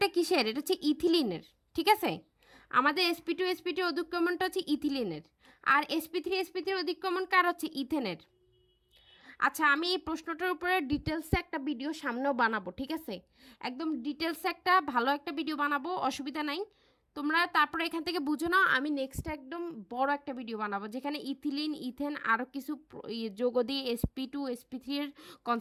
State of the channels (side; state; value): both; identical; correlation 1.00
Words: কিসের? এটা হচ্ছে ইথিলিনের, ঠিক আছে? আমাদের sp2 অধিক্রমণটা হচ্ছে ইথিলিনের, আর sp3 অধিক্রমণ কার? হচ্ছে ইথেনের। আচ্ছা, আমি এই প্রশ্নটার উপরে ডিটেলসে একটা ভিডিও সামনেও বানাবো, ঠিক আছে? একদম ডিটেলসে একটা ভালো একটা ভিডিও বানাবো, অসুবিধা নাই। তোমরা তারপরে এখান থেকে বুঝো নাও, আমি নেক্সট একদম বড় একটা ভিডিও বানাবো যেখানে ইথিলিন ইথেন আরও কিছু যোগ দিয়ে sp2 এর